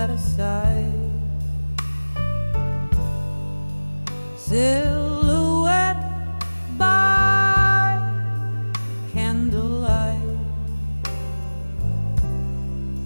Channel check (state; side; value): inverted; both; correlation -1.00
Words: aside, silhouette by candlelight,